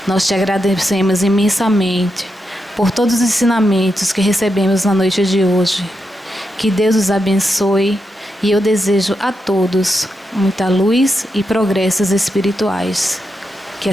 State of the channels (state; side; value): normal; both; correlation 0.85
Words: Nós Te agradecemos imensamente por todos os ensinamentos que recebemos na noite de hoje. Que Deus os abençoe. E eu desejo a todos muita luz e progressos espirituais. Que